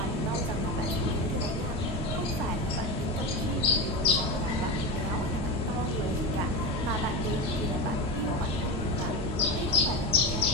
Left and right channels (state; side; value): normal; both; correlation 0.20